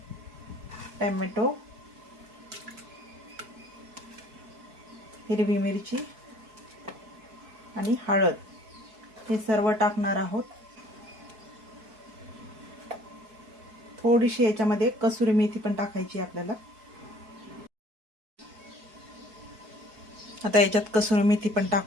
टोमॅटो, हिरवी मिरची आणि हळद हे सर्व टाकणार आहोत। थोडीशी याच्यामध्ये कसुरी मेथी पण टाकायची आपल्याला। आता याच्यात कसुरी मेथी पण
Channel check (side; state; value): left; late; 4.6 ms